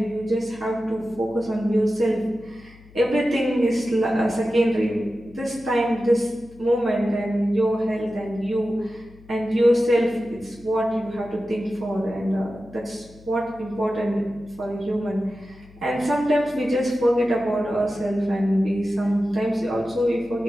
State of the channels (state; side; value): noise; left; hum, 23 dB below the sound